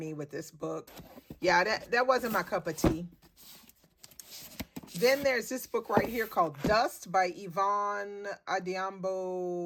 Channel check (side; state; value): both; identical; correlation 1.00